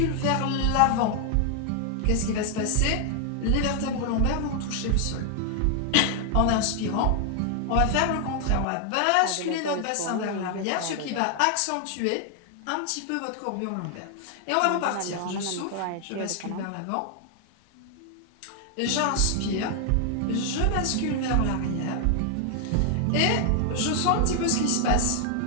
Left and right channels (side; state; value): both; different; correlation 0.00